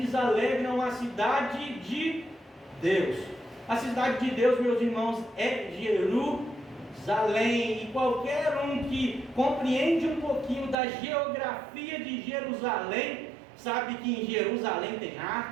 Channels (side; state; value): left; drops out; at 10.8 s